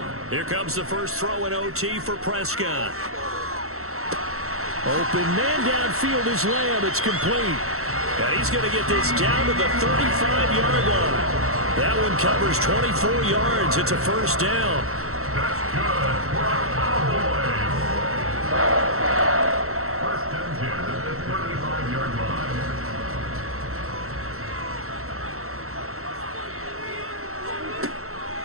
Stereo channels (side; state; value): left; late; 0.63 ms